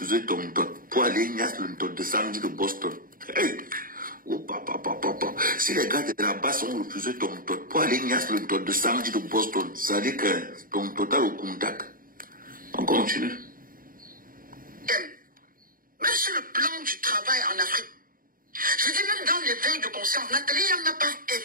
ton tot pour aller ignace le tot de samedi de Boston. Hey! Oh, papa. Si les gars de la base ont refusé ton tot pour aller ignace le tot de samedi de Boston, ça dit que ton total au contact. On continue. Même sur le plan du travail en Afrique, je dis même dans l'éveil de conscience, Nathalie n'a pas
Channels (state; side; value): late; left; 0.41 ms